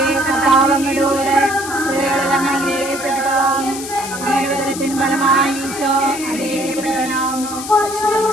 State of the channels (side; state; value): left; noise; hiss, 9 dB below the sound